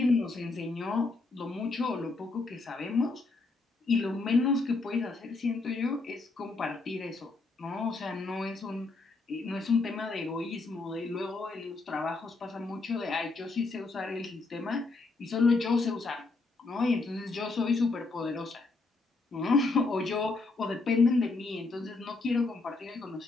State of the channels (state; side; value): quieter; right; 3.6 dB